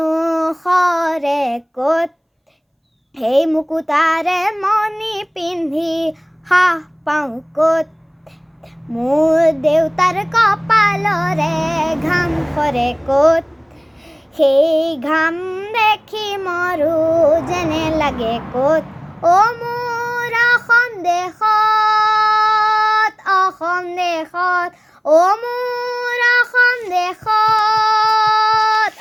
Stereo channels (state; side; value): identical; both; correlation 1.00